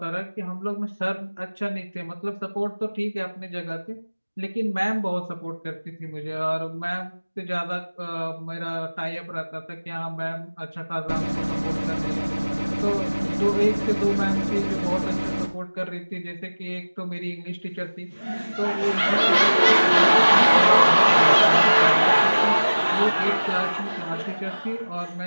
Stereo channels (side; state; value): both; inverted; correlation -1.00